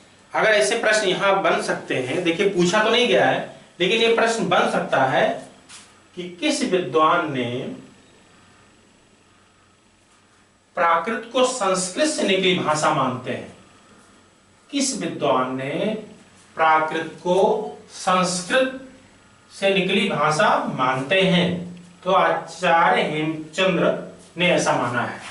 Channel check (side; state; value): both; identical; correlation 1.00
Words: अगर ऐसे प्रश्न यहां बन सकते हैं, देखिए पूछा तो नहीं गया है लेकिन ये प्रश्न बन सकता है कि किस विद्वान ने प्राकृत को संस्कृत से निकली भाषा मानते हैं। किस विद्वान ने प्राकृत को संस्कृत से निकली भाषा मानते हैं? तो आचार्य हेमचंद्र ने ऐसा माना है।